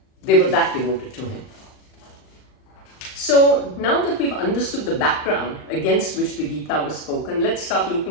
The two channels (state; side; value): late; right; 39 ms